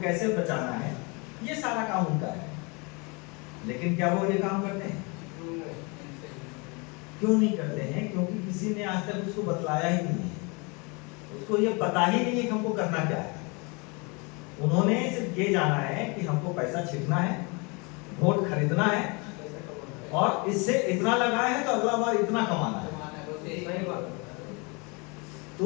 कैसे बचाना है, ये सारा काम उनका है। लेकिन क्या वो ये काम करते हैं? क्यों नहीं करते हैं? क्योंकि किसी ने आज तक उसको बतलाया ही नहीं है, उसको ये पता ही नहीं है कि हमको करना क्या है। उन्होंने सिर्फ ये जाना है कि हमको पैसा छिड़कना है, वोट खरीदना है, और इससे इतना लगाए हैं तो अगला बार इतना कमाना है।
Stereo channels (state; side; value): quieter; right; 30.1 dB